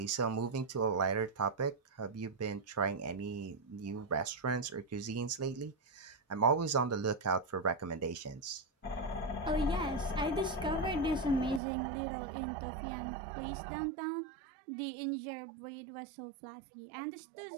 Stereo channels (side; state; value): left; drops out; at 11.6 s